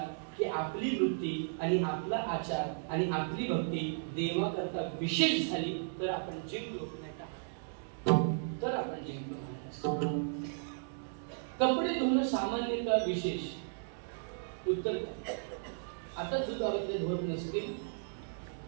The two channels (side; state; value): left; silent; digital silence